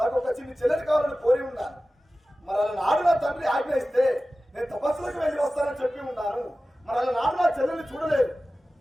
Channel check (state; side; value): normal; both; correlation 0.96